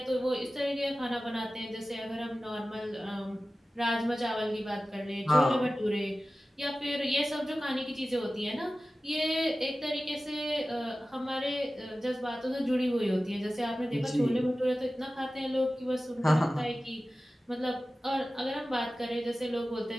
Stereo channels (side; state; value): both; normal; correlation 0.95